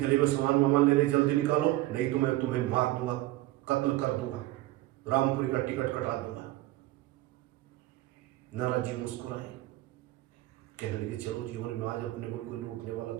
में सामान वामान ले रहे जल्दी निकालो, नहीं तो मैं तुम्हें मार दूंगा, कत्ल कर दूंगा, रामपुरी का टिकट कटा दूंगा। नारद जी मुस्कुराए, कहने लगे चलो जीवन में आज अपने को कोई लूटने वाला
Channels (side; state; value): left; quieter; 17.1 dB